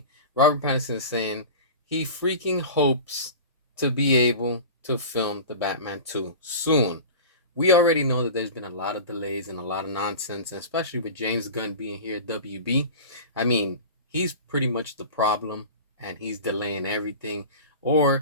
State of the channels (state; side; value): inverted; both; correlation -0.33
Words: Robert Pattinson is saying he freaking hopes to be able to film the Batman 2 soon. We already know that there's been a lot of delays and a lot of nonsense, and especially with James Gunn being here at WB. I mean, he's pretty much the problem, and he's delaying everything,